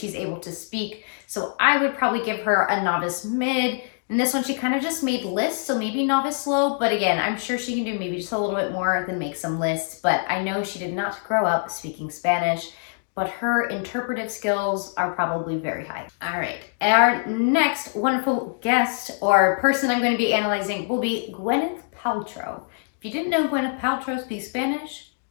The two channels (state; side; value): silent; right; digital silence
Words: able to speak. So I would probably give her a novice mid. And this one, she kind of just made lists, so maybe novice low. But again, I'm sure she can do maybe just a little bit more than make some lists. But I know she did not grow up speaking Spanish, but her interpretive skills are probably very high. All right, our next wonderful guest or person I'm going to be analyzing will be Gwyneth Paltrow. If you didn't know Gwyneth Paltrow speaks Spanish,